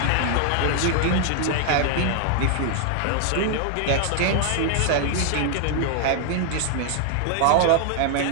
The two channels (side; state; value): both; different; correlation 0.00